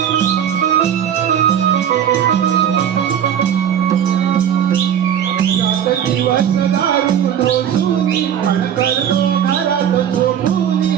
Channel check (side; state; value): left; quieter; 9.2 dB